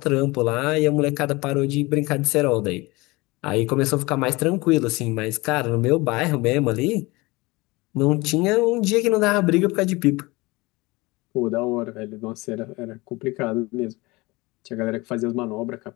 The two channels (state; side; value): quieter; right; 23.0 dB